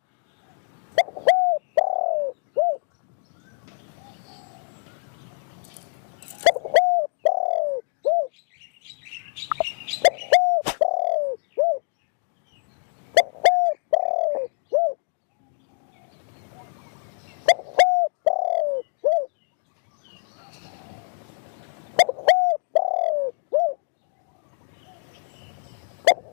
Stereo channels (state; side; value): silent; right; digital silence